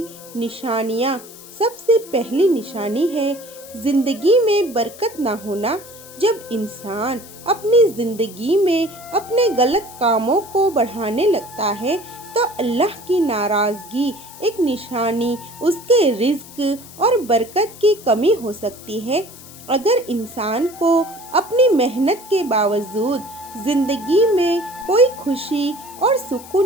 نشانیاں۔ سب سے پہلی نشانی ہے زندگی میں برکت نہ ہونا۔ جب انسان اپنی زندگی میں اپنے غلط کاموں کو بڑھانے لگتا ہے تو اللہ کی ناراضگی ایک نشانی اس کے رزق اور برکت کی کمی ہو سکتی ہے۔ اگر انسان کو اپنی محنت کے باوجود زندگی میں کوئی خوشی اور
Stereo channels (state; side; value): noise; left; hiss, 18 dB below the sound